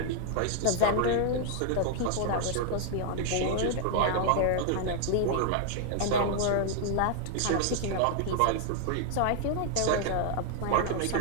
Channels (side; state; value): both; different; correlation 0.00